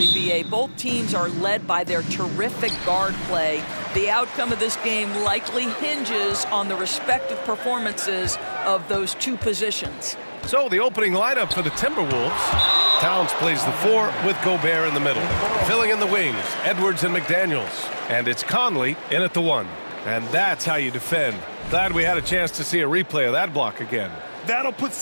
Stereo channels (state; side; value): inverted; both; correlation -1.00